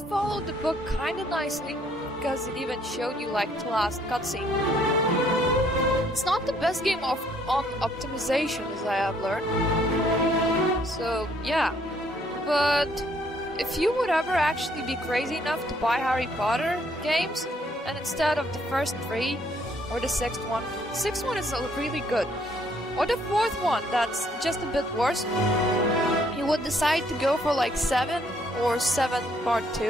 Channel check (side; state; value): both; normal; correlation 0.66